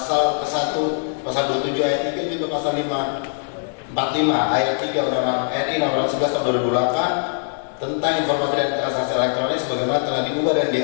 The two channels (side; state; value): right; silent; digital silence